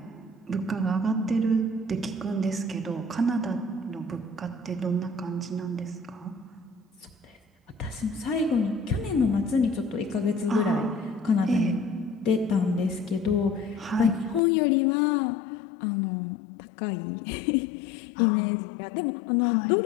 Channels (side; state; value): right; drops out; at 14.4 s